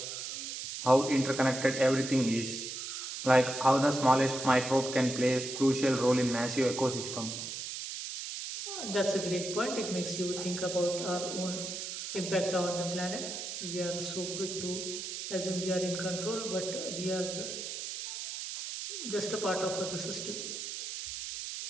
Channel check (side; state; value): right; noise; hiss, 6 dB below the sound